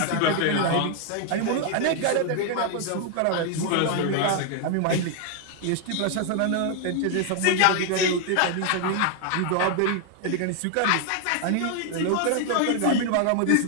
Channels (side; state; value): both; different; correlation 0.00